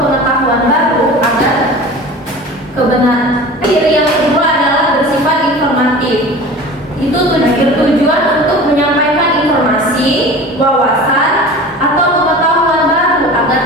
baru agar kebenaran. Ciri yang kedua adalah bersifat informatif. Itu bertujuan untuk menyampaikan informasi, wawasan atau pengetahuan baru agar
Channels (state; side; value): normal; both; correlation 0.38